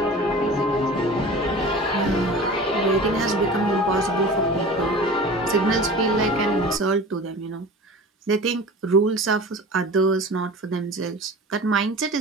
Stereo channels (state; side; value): normal; both; correlation 0.37